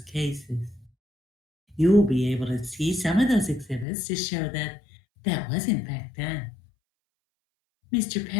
cases. You will be able to see some of those exhibits to show that that was in fact done. Mr.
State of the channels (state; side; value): drops out; right; at 3.9 s